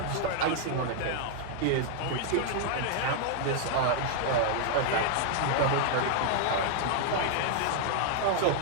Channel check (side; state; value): both; different; correlation 0.00